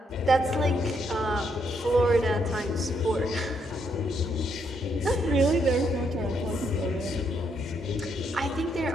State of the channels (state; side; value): normal; both; correlation 0.75